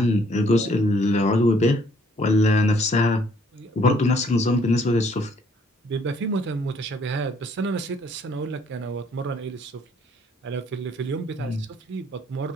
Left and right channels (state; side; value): normal; both; correlation 0.63